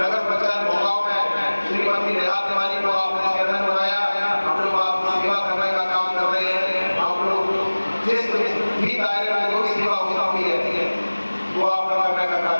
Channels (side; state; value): both; inverted; correlation -1.00